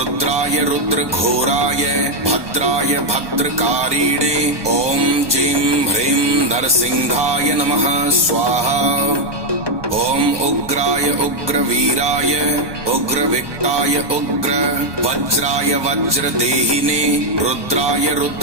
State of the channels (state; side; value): late; left; 1.2 ms